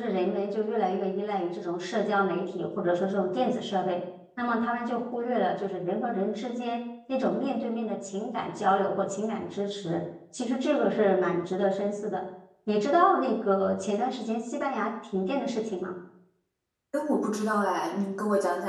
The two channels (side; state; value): both; identical; correlation 1.00